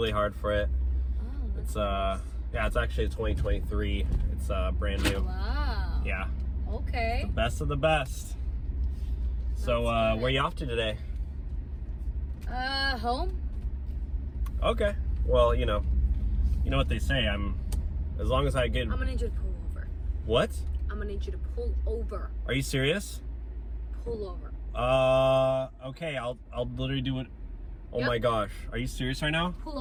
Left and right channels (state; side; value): identical; both; correlation 1.00